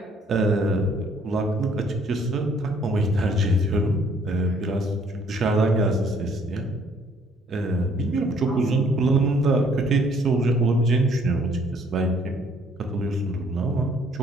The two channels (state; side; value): normal; both; correlation 0.62